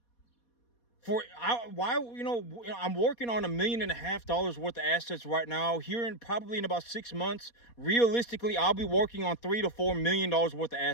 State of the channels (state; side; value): late; right; 4.2 ms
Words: I'm working on $1.5 million worth of assets right now. Probably in about 6 months, realistically, I'll be working on $3 to $4 million worth of